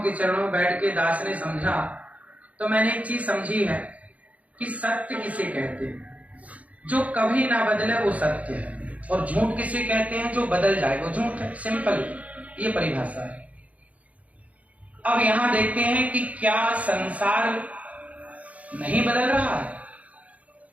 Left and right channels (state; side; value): late; left; 0.069 ms